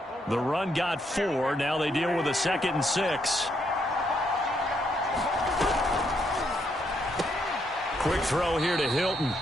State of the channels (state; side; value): normal; both; correlation 0.75